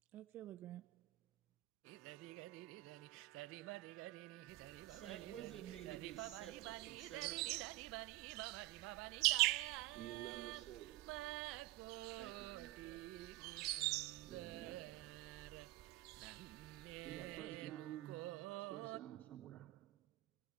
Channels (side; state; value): left; quieter; 18.4 dB